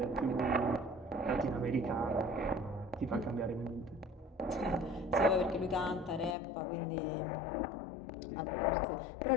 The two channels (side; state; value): right; drops out; at 6.4 s